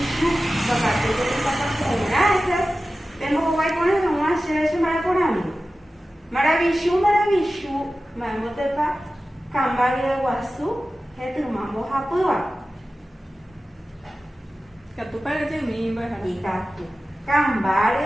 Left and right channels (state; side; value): normal; both; correlation 0.95